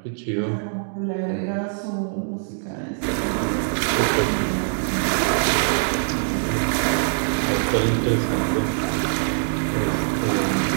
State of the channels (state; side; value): silent; left; digital silence